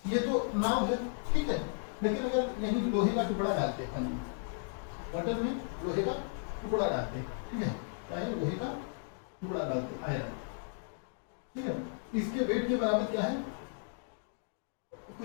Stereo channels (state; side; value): silent; right; digital silence